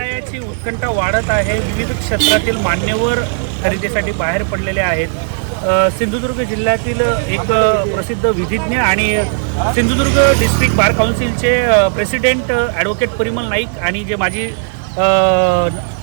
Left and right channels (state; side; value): silent; left; digital silence